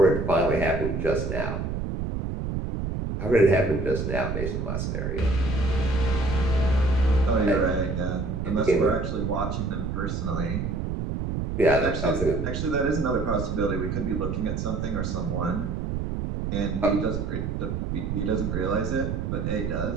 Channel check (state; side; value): noise; right; rumble, 2 dB below the sound